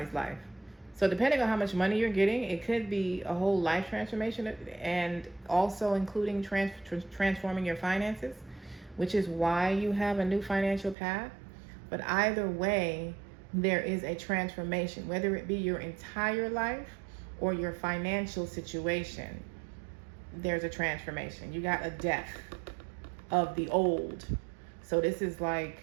life. So depending on how much money you're getting, it could be a whole life transformation, and also including transforming your finances, which is why you have a new financial path. But either way, there is a transformation, whether it be your entire life or your financial situation. There's a transformation. You got a death of the old. So this is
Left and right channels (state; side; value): drops out; left; at 11.0 s